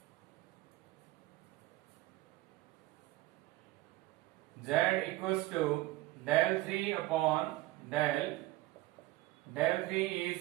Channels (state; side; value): quieter; left; 17.6 dB